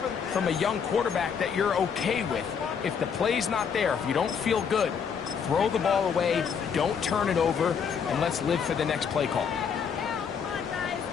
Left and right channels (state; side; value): quieter; right; 6.8 dB